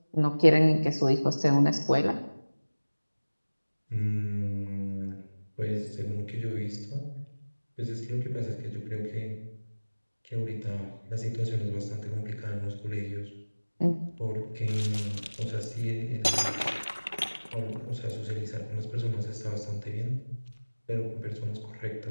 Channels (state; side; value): inverted; both; correlation -1.00